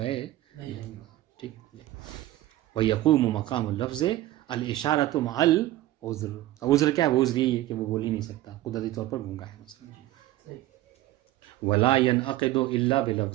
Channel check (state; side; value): quieter; left; 15.2 dB